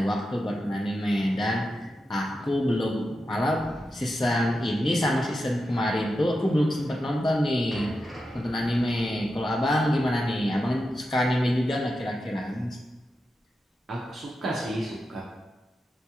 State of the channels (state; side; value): normal; both; correlation 0.89